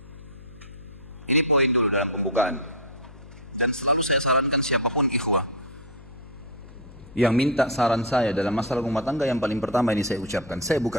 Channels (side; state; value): left; noise; hum, 19 dB below the sound